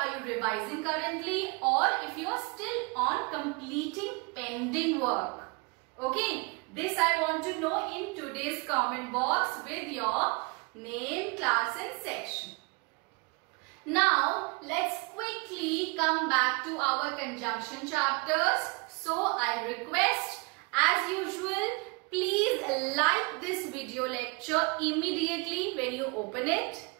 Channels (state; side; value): quieter; left; 30.1 dB